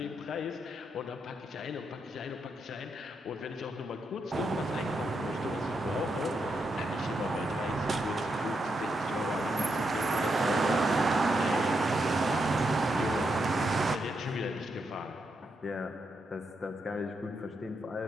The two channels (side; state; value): both; normal; correlation 0.82